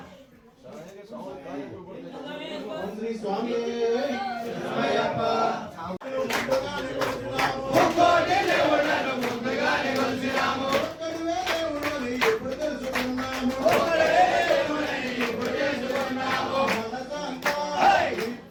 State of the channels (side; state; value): both; identical; correlation 1.00